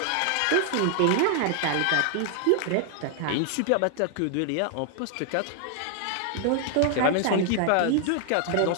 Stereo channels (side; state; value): both; different; correlation 0.00